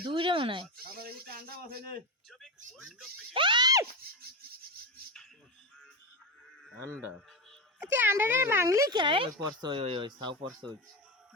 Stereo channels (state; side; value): normal; both; correlation 0.15